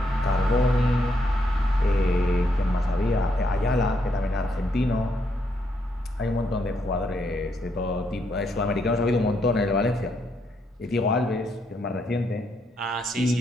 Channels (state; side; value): normal; both; correlation 0.77